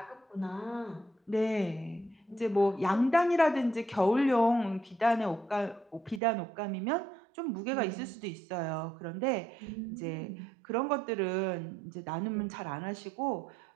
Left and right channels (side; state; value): left; drops out; at 6.2 s